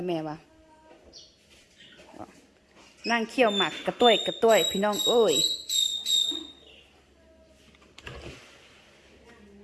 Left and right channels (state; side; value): identical; both; correlation 1.00